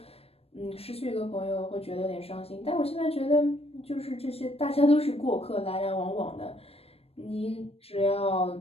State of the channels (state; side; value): late; right; 0.28 ms